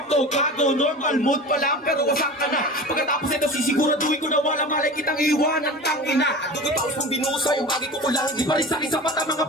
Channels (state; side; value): normal; both; correlation 0.34